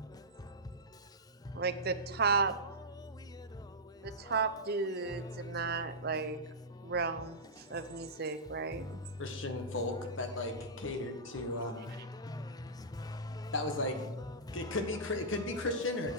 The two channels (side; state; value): both; normal; correlation -0.13